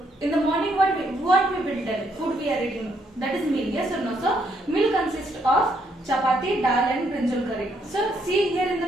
in the morning what we will tell, food we are eating, that is meal, yes or no? So meal consists of chapati, dal and brinjal curry. So see here in the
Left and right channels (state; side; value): normal; both; correlation 0.73